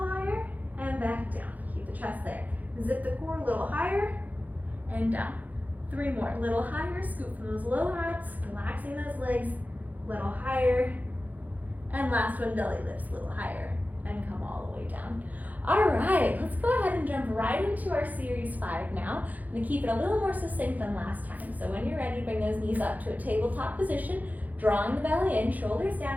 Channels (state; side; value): late; left; 0.080 ms